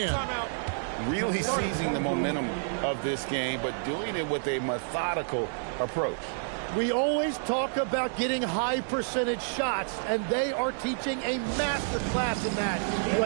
Really seizing the momentum of this game, but doing it with a methodical approach. We always talk about getting high percentage shots, and they are teaching a master class in that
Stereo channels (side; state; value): left; silent; digital silence